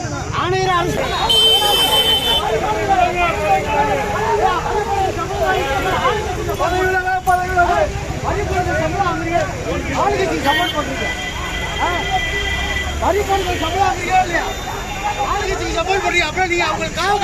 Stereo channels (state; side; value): identical; both; correlation 1.00